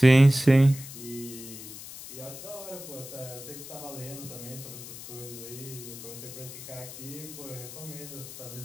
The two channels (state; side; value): noise; left; hiss, 13 dB below the sound